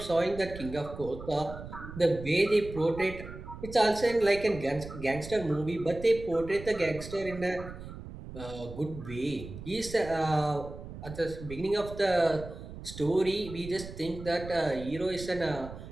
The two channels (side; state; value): right; noise; rumble, 12 dB below the sound